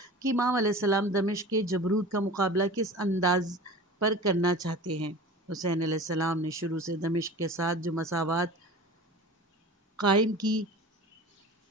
کہ امام علیہ السلام دمشق کے جبروت کا مقابلہ کس انداز پر کرنا چاہتے ہیں۔ حسین علیہ السلام نے شروع سے دمشق کے ساتھ جو مساوات قائم کی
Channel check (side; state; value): both; normal; correlation 0.36